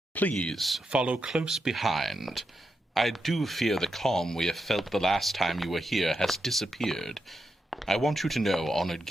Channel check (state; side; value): normal; both; correlation 0.85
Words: Please follow close behind. I do fear the calm we have felt the last time you were here has disappeared. I want you to know, honored